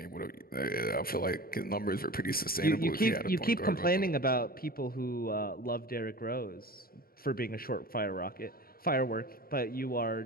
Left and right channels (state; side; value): late; right; 0.43 ms